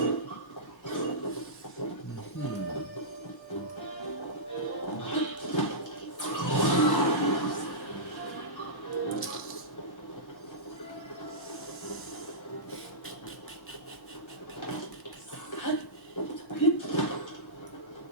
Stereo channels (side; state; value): both; normal; correlation -0.16